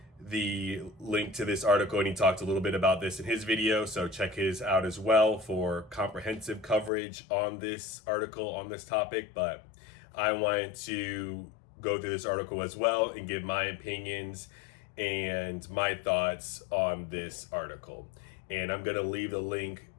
the link to this article and he talked a little bit about this in his video, so check his out as well for comprehensive coverage on this article, on this topic. But I wanted to go through this article as well and give my opinions and my thoughts on this article. And I'm going to leave the link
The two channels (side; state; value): right; drops out; at 6.9 s